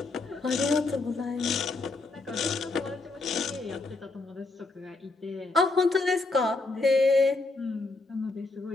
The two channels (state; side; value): quieter; right; 3.4 dB